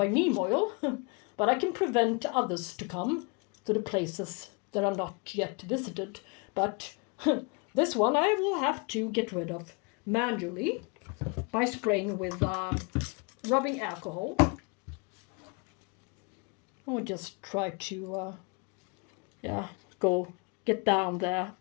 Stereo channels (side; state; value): right; quieter; 32.0 dB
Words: neem oil, but I can prevent others to come to the places that are not yet visited. But this one I will have to get rid of manually by spraying with rubbing alcohol. I'll just try to go get down there